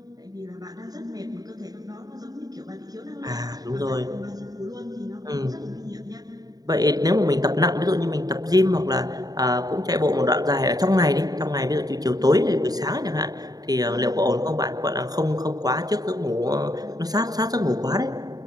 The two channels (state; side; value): late; left; 0.18 ms